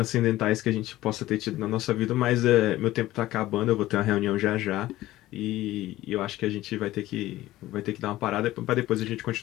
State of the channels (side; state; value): right; quieter; 16.1 dB